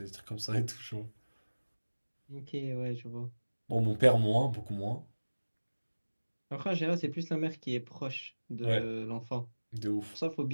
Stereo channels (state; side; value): inverted; both; correlation -1.00